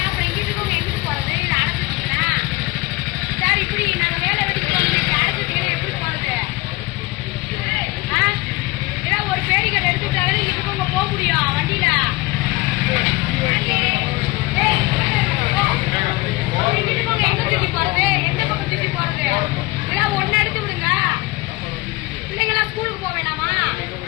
ஸ்கூலுக்கு போக வேணாமா?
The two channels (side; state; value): right; quieter; 21.6 dB